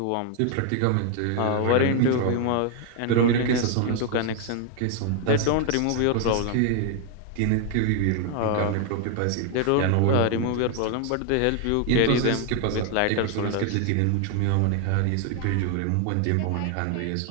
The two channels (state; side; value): different; both; correlation 0.00